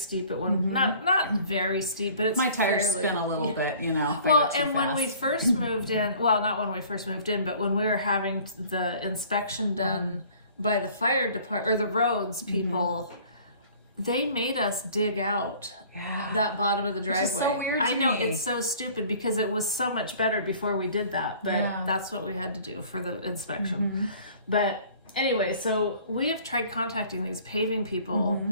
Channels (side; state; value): both; inverted; correlation -0.51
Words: at one, not very steep, but it's my tires spin a little bit, Well, and when we first moved in, well, not when we first moved in, but when we were having the inspection done by the fire department or the roads people, they made us dig out that bottom of the driveway. Which is so weird to I know, me. it's so stupid because it was so much better before we did that, but that's what we had to do for the inspection. But anyway, so we have tried contacting these paving people